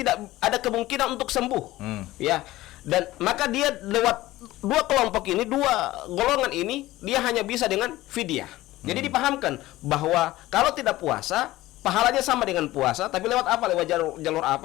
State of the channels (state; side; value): quieter; right; 17.0 dB